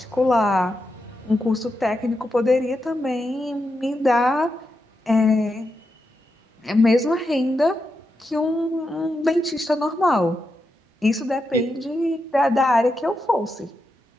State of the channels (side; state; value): both; normal; correlation 0.86